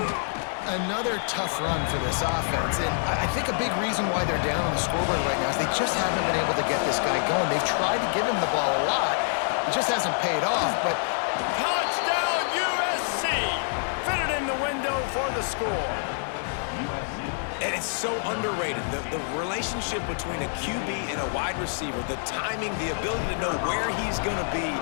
Another tough run for this offense, and I think a big reason why they're down on the scoreboard right now is they just haven't been able to get this guy going. They've tried to give him the ball a lot. It just hasn't paid off, but... Touchdown, USC! Fitted in the window for the score. And it's so underrated. The relationship between a QB and a wide receiver, the timing, the ability to know where he's going to be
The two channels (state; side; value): silent; right; 60 dB below the other